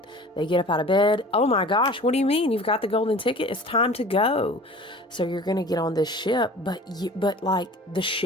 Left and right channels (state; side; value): normal; both; correlation 0.43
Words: They get up out of bed. Oh my gosh, what do you mean? You've got the golden ticket? It's time to go. So you're going to get on this ship, but like the